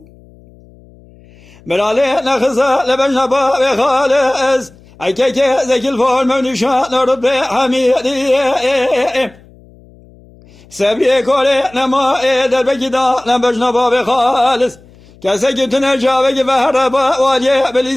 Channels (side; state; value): left; noise; hum, 26 dB below the sound